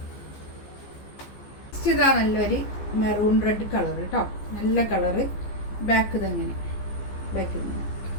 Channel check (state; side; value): late; right; 15 ms